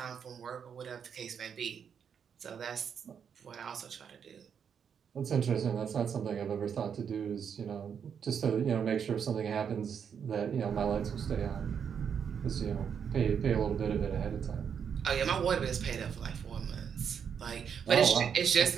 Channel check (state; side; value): quieter; left; 7.4 dB